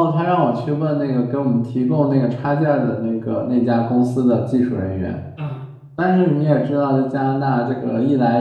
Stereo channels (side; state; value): both; identical; correlation 1.00